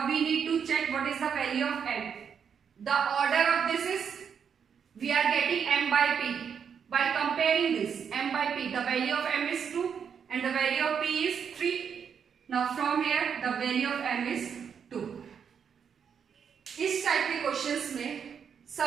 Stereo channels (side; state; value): left; quieter; 7.2 dB